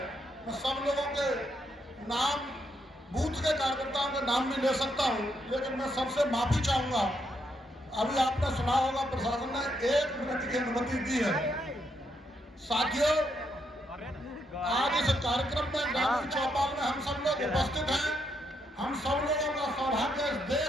मैं सब लोगों के नाम, बूथ के कार्यकर्ताओं के नाम भी ले सकता हूँ, लेकिन मैं सबसे माफी चाहूंगा। अभी आपने सुना होगा प्रशासन ने 1 मिनट की अनुमति दी है। साथियों, आज इस कार्यक्रम में गांधी चौपाल में हम सब लोग उपस्थित हैं। हम सब लोगों का सौभाग्य, इस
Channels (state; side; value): normal; both; correlation 0.78